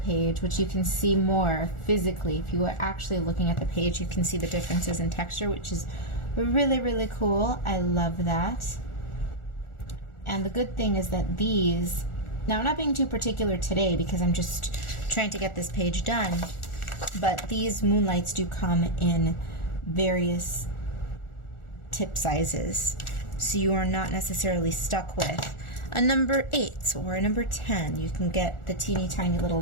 which you can see more physically. If you are actually looking at the page, you can see the differences in texture, which is really, really cool. I love that. And the good thing is that these, now I'm not being too particular today because I'm just trying to get this page done, but these moonlights do come in various tip sizes. So you are not necessarily stuck with a number 8 or a number 10. You can get the teeny tiny little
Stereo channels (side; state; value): right; late; 1.4 ms